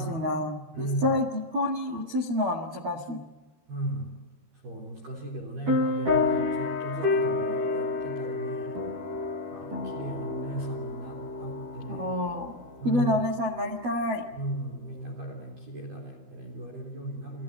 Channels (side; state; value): left; late; 12 ms